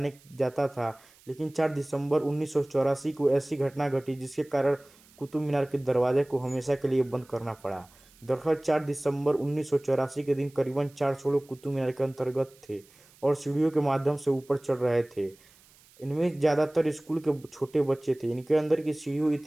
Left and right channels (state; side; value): noise; right; hiss, 28 dB below the sound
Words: जाता था, लेकिन 4 दिसंबर 1984 को ऐसी घटना घटी जिसके कारण कुतुब मीनार के दरवाजे को हमेशा के लिए बंद करना पड़ा। दरअसल 4 दिसंबर 1984 के दिन करीबन 400 लोग कुतुब मीनार के अंतर्गत थे और सीढ़ियों के माध्यम से ऊपर चढ़ रहे थे। इनमें ज़्यादातर स्कूल के छोटे बच्चे थे। इनके अंदर की सीढ़ियाँ